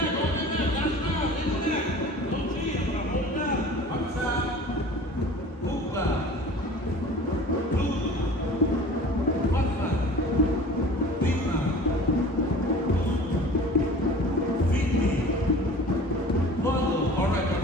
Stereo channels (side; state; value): both; normal; correlation 0.42